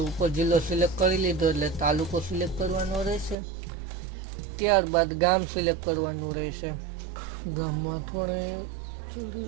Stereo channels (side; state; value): left; drops out; at 3.4 s